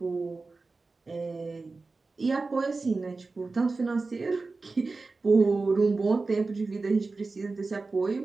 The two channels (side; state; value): left; quieter; 3.8 dB